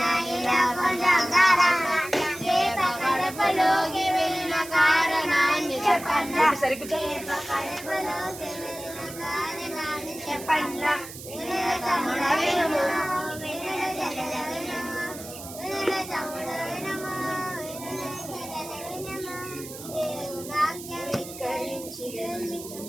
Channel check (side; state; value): right; noise; hiss, 13 dB below the sound